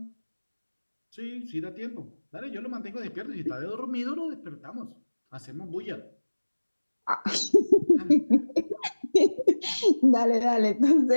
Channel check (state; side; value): inverted; both; correlation -1.00